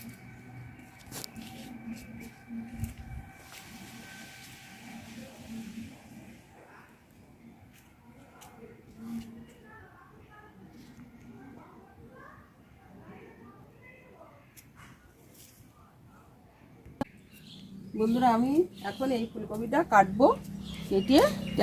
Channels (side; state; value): both; identical; correlation 1.00